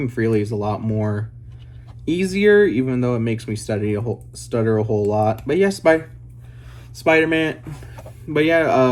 freely is a lot more easier, even though it makes me stutter a whole lot. But yeah, Spider-Man. But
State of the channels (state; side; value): identical; both; correlation 1.00